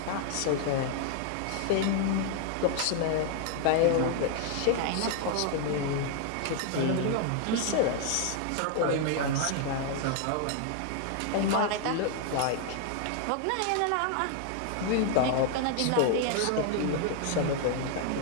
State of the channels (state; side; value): different; both; correlation 0.00